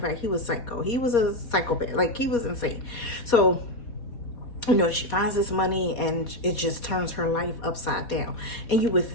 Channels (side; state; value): right; late; 4.2 ms